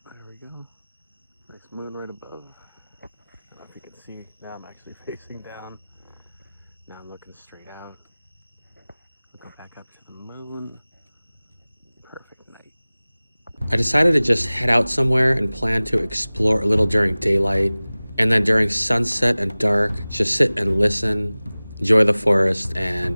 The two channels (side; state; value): both; inverted; correlation -0.99